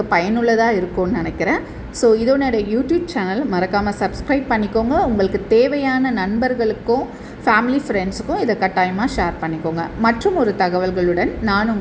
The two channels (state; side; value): identical; both; correlation 1.00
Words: பயனுள்ளதாக இருக்கும்னு நினைக்கிறேன். ஸோ இதோட யூடியூப் சேனல் மறக்காமல் சப்ஸ்கிரைப் பண்ணிக்கோங்க. உங்களுக்கு தேவையான நண்பர்களுக்கும் ஃபேமிலி ஃப்ரெண்ட்ஸுக்கும் இதை கட்டாயமாக ஷேர் பண்ணிக்கோங்க. மற்றும் ஒரு தகவல்களுடன் நான்